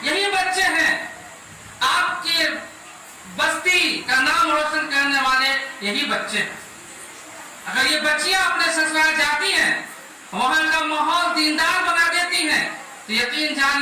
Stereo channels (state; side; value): identical; both; correlation 1.00